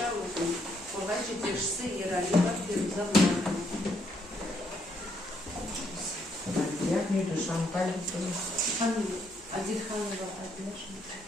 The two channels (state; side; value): normal; both; correlation 0.73